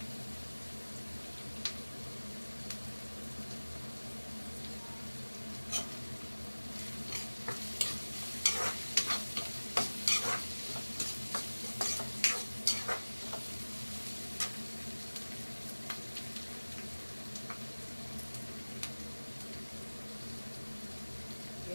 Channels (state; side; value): inverted; both; correlation -1.00